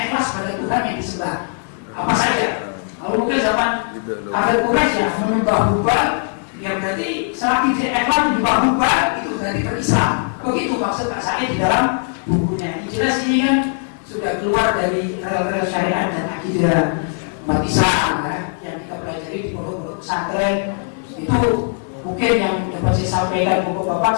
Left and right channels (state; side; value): silent; right; 58 dB below the other